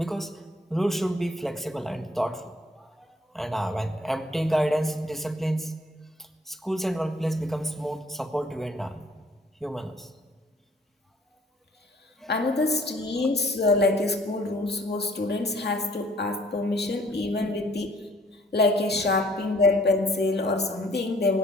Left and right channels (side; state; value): both; normal; correlation 0.59